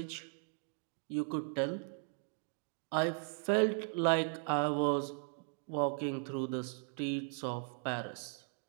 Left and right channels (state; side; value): silent; left; 53 dB below the other